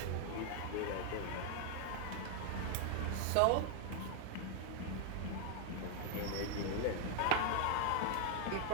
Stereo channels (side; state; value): both; different; correlation 0.00